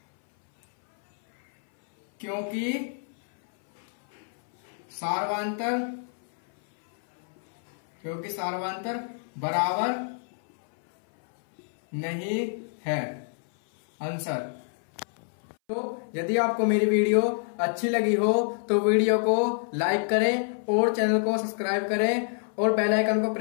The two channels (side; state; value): right; silent; 60 dB below the other